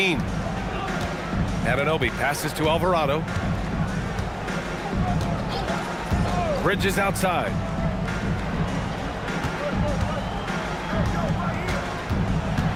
Anunoby passes to Alvarado. Bridges outside.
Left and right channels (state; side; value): identical; both; correlation 1.00